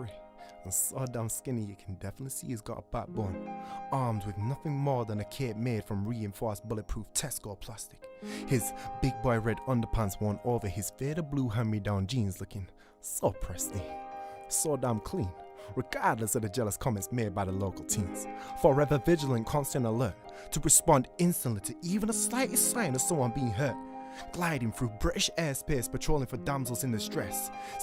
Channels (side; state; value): both; identical; correlation 1.00